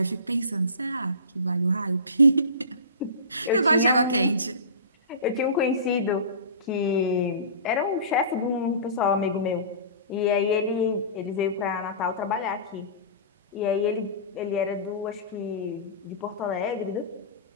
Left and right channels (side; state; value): both; inverted; correlation -0.34